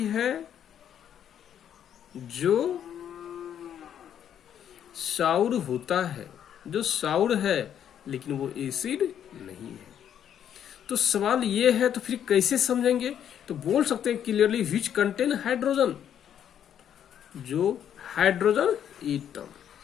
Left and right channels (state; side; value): quieter; right; 9.5 dB